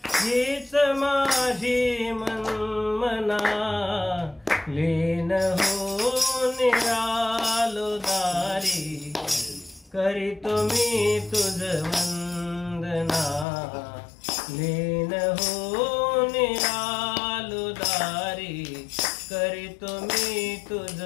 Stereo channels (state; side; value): drops out; right; at 13.5 s